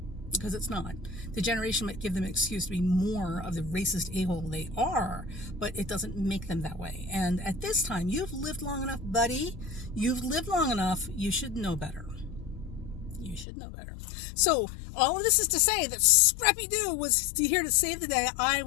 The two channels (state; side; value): drops out; right; at 13.5 s